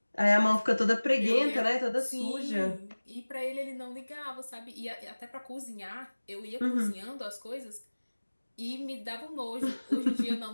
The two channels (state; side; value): inverted; both; correlation -1.00